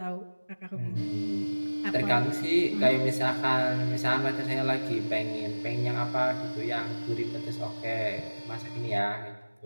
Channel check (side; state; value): both; inverted; correlation -1.00